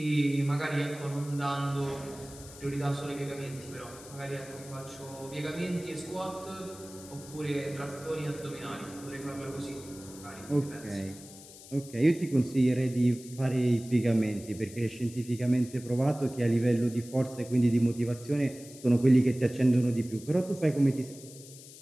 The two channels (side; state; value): left; noise; hiss, 18 dB below the sound